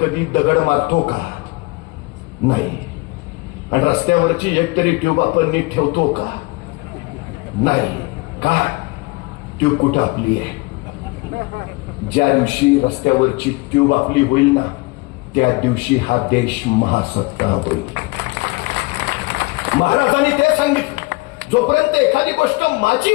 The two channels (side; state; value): right; quieter; 24.9 dB